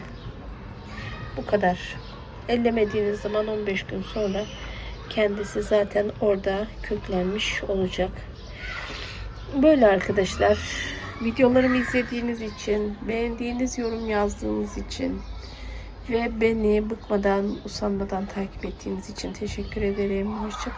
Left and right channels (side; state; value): both; identical; correlation 1.00